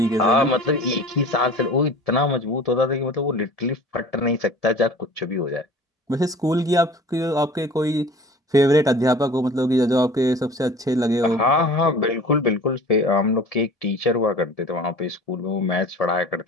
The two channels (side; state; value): both; normal; correlation 0.42